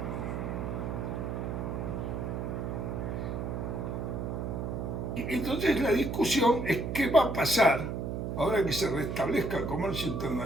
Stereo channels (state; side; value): noise; right; hum, 3 dB below the sound